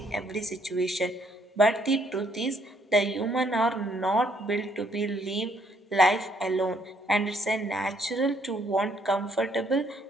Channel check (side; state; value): both; normal; correlation 0.68